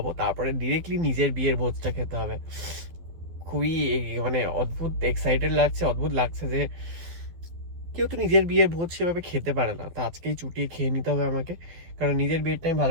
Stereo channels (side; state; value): left; late; 12 ms